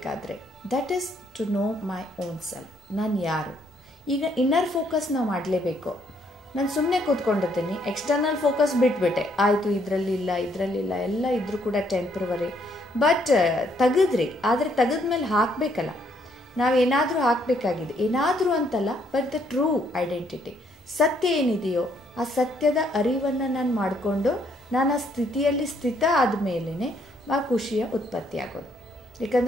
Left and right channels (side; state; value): both; normal; correlation 0.70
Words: That is to know my own self. ನಾನು ಯಾರು? ಈಗ ಇನ್ನರ್ ಫೋಕಸ್ ನಾವು ಮಾಡಲೇಬೇಕು. ನಾನು ಸುಮ್ಮನೆ ಕೂತ್ಕೊಂಡಿದ್ದೀನಿ, ಎಕ್ಸ್ಟರ್ನಲ್ ಫೋಕಸ್ ಬಿಟ್ಬಿಟ್ಟೆ, ಆಯಿತು ಇದರಲ್ಲಿಲ್ಲ ಎಲ್ಲ ಇದ್ರೂ ಕೂಡ ಟೆಂಪ್ರವರಿ. ಬಟ್ ತೆಗೆದ್ರಿ, ಆದರೆ ತೆಗೆದ್ಮೇಲೆ ಹಾಕಬೇಕಲ್ಲ, ನಾವೇನಾದರೂ ಹಾಕಬೇಕಾಗಿದೆ, ಏನಾದರೂ ಅಂತಲ್ಲ, ಬಟ್ ದ ಟ್ರೂ ಐಡೆಂಟಿಟಿ, ಸತ್ಯ ಏನಿದೆಯೋ ಆ ಸತ್ಯದ ಅರಿವನ್ನು ನಾನು ಮಾಡಿಕೊಂಡು ನಾನು ಆ ಸ್ಥಿತಿಯಲ್ಲಿ ಸ್ಥಿತ ಆದಮೇಲೆ ಆ ಖುಷಿಯ ಉತ್ಪತ್ತಿ ಆಗೋದು.